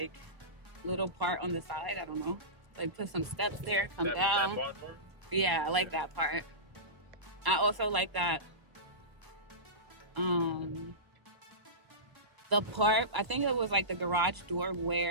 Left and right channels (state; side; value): late; left; 1.1 ms